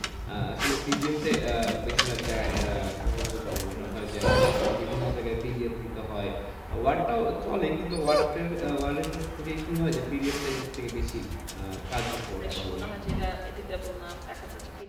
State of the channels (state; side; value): identical; both; correlation 1.00